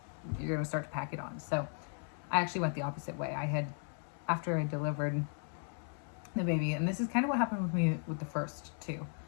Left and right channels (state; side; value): silent; right; 54 dB below the other